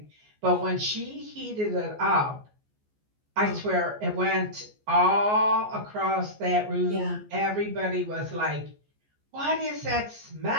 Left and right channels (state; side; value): late; left; 14 ms